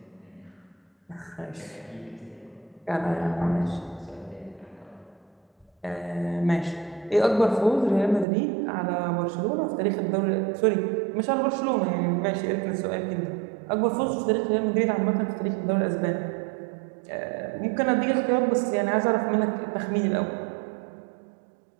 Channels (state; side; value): drops out; left; at 8.2 s